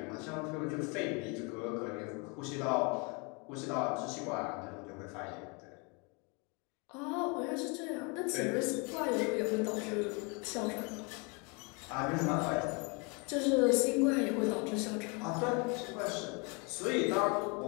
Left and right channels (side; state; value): right; quieter; 31.7 dB